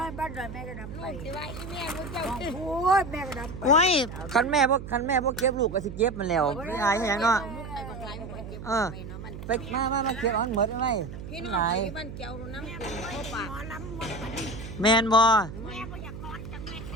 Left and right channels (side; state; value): right; noise; hum, 10 dB below the sound